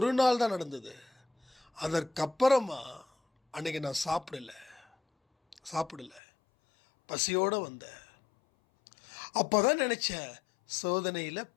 நாள் தான் நடந்தது. அதற்கப்புறமா அன்னைக்கு நான் சாப்பிடல, பசியோடு வந்தேன். அப்போ தான் நினச்சேன், சோதனையில்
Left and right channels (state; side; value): drops out; right; at 6.2 s